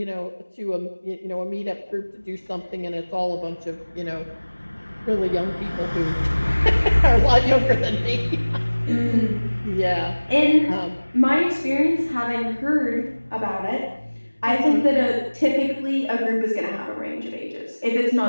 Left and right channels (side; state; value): both; inverted; correlation -1.00